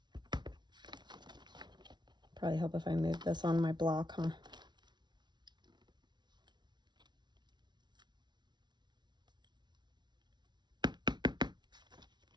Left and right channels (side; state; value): left; late; 0.21 ms